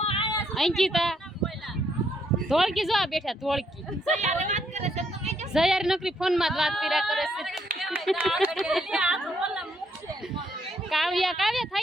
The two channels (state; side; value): normal; both; correlation 0.73